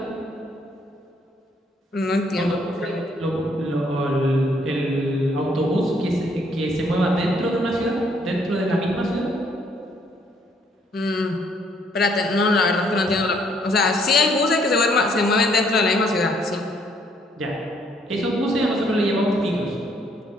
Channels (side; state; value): both; normal; correlation 0.67